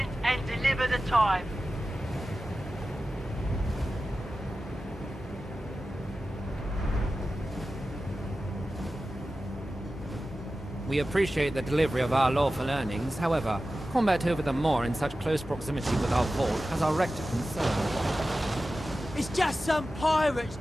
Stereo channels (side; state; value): both; normal; correlation 0.94